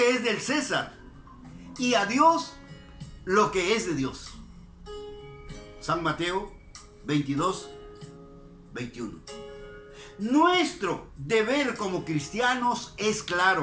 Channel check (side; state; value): both; identical; correlation 1.00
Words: es del César, y a Dios lo que es de Dios. San Mateo 22, 21. Nuestro deber como cristianos es